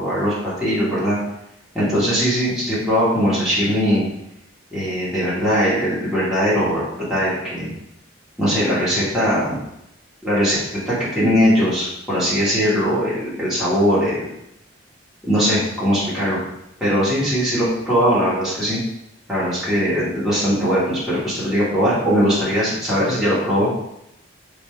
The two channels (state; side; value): normal; both; correlation 0.48